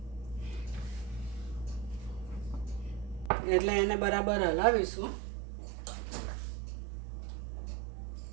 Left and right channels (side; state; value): left; drops out; at 3.3 s